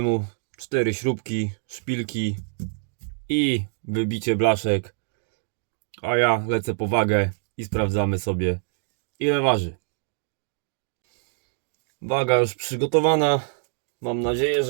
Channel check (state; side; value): silent; left; digital silence